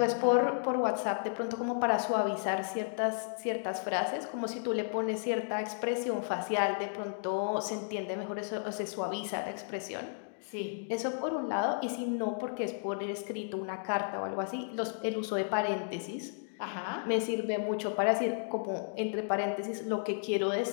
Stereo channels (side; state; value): right; silent; digital silence